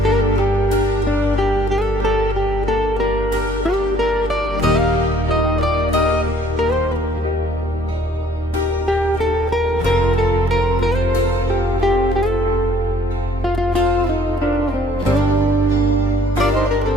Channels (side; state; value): both; normal; correlation 0.59